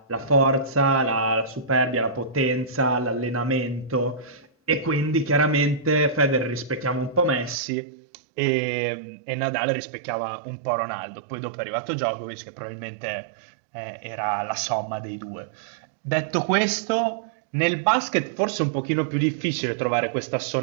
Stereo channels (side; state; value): left; drops out; at 7.6 s